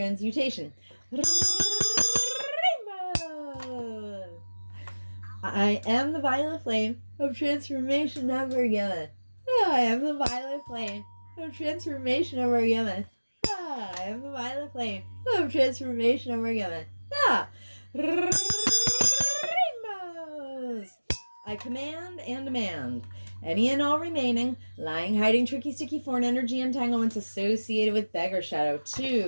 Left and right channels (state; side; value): inverted; both; correlation -1.00